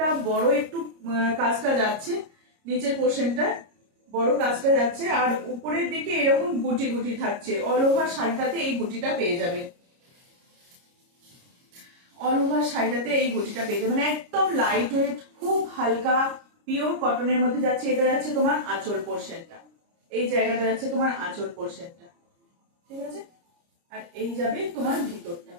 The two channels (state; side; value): late; left; 29 ms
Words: বড় একটু কাজটা যাচ্ছে, নিচের পোর্শনটা বড় কাজটা যাচ্ছে, আর উপরের দিকে এরকম গুটি গুটি থাকছে। অল ওভার শাড়িটাতে এই গুটিটা পেয়ে যাবে, অল ওভার শাড়িটাতে এই গুটিটা পেয়ে যাবে, মানে একদম লাইট ওয়েট, খুব হালকা পিওর কটনের মধ্যে যাচ্ছে। এটা যাচ্ছে তোমার আঁচল পোর্শনটা, এই জায়গাটা যাচ্ছে তোমার আঁচল পোর্শনটা। ঠিক আছে, আর এই যাবে তোমার ভিতরটা,